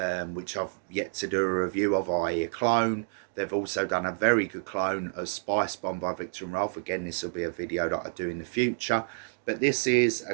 which I've yet to do a review of, i.e. a clone. They've also done a very good clone of Spice Bomb by Viktor and Rolf. Again, this will be a video that I do in the future. But this is a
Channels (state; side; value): silent; left; digital silence